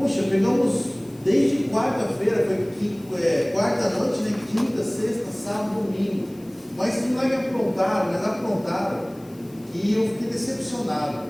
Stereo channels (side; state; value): left; noise; hiss, 27 dB below the sound